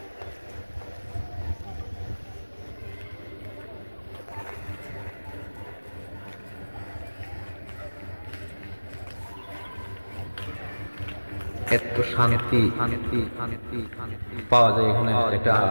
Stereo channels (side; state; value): both; inverted; correlation -1.00